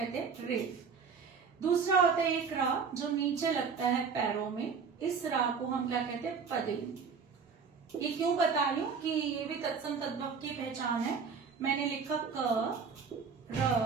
हैं, रेफ। दूसरा होता है एक रा जो नीचे लगता है पैरों में, इस रा को हम क्या कहते हैं, पदेन। ये क्यों बता रही हूं कि ये भी तत्सम तद्भव की पहचान है। मैंने लिखा क, र,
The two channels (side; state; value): left; quieter; 5.7 dB